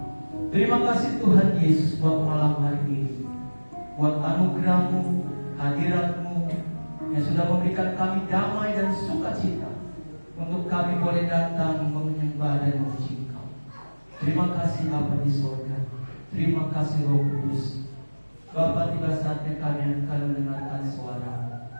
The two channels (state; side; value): inverted; both; correlation -1.00